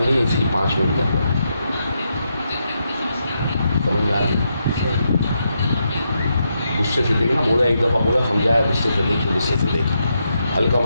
ली इसकी 5 मिनट के अंदर। समझ में आ गई? गुस्से से देखना, बोला एक दफ़ा, बोला समझाया, गुस्से से देख, गुस्से से देख, हल्का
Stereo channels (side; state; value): both; inverted; correlation -0.82